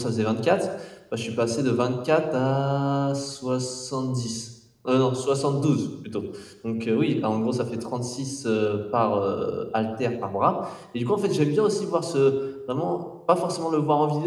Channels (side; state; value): both; identical; correlation 1.00